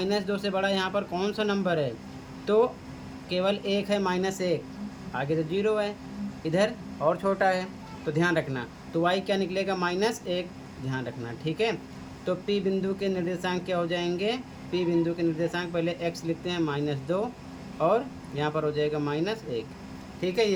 से बड़ा यहाँ पर कौन सा नंबर है, तो केवल एक है -1, आगे तो 0 है, इधर और छोटा है। तो ध्यान रखना, तो y क्या निकलेगा, -1, ध्यान रखना। ठीक है, तो P बिंदु के निर्देशांक क्या हो जाएंगे, P बिंदु के निर्देशांक पहले x लिखते हैं -2 और यहाँ पर हो जाएगा -1। ठीक है,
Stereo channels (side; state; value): both; identical; correlation 1.00